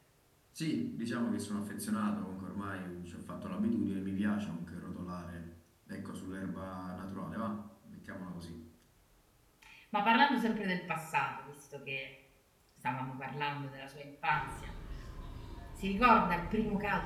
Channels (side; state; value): both; identical; correlation 1.00